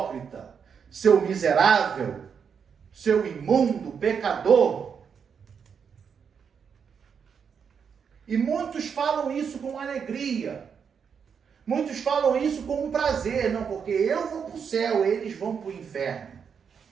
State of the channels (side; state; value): left; quieter; 6.8 dB